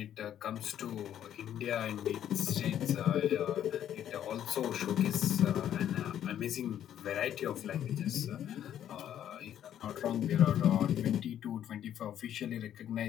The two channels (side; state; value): right; quieter; 10.5 dB